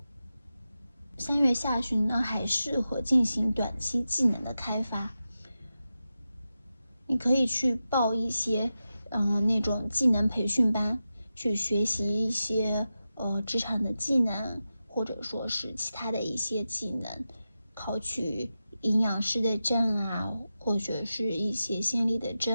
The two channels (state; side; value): inverted; both; correlation -0.92